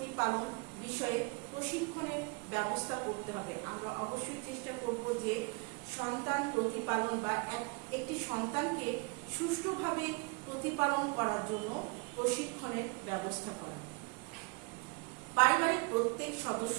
বিষয়ে প্রশিক্ষণের ব্যবস্থা করতে হবে। আমরা অবশ্যই চেষ্টা করব যে সন্তান প্রতিপালন বা একটি সন্তানকে সুষ্ঠুভাবে প্রতিপালন করার জন্য প্রশিক্ষণের ব্যবস্থা করা। পারিবারিক প্রত্যেক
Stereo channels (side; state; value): left; quieter; 29.8 dB